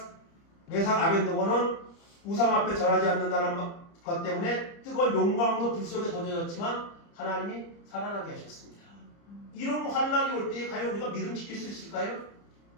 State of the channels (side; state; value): right; late; 30 ms